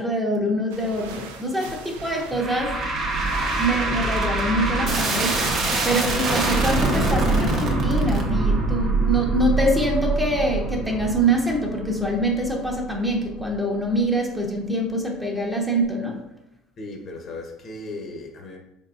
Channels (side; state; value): both; normal; correlation 0.44